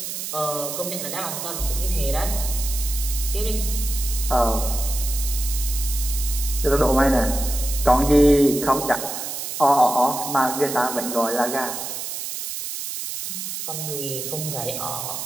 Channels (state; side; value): noise; right; hiss, 6 dB below the sound